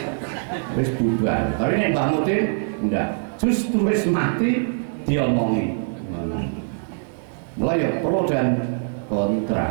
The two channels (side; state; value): left; silent; digital silence